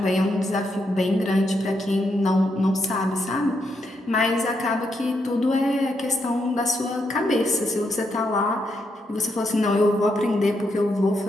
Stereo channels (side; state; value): both; normal; correlation 0.80